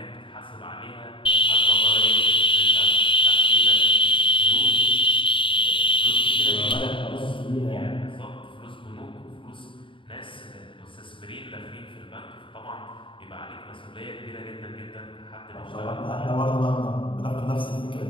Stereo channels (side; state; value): right; late; 0.25 ms